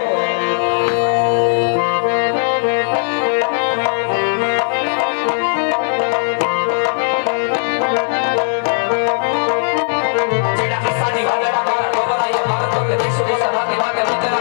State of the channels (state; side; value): silent; right; digital silence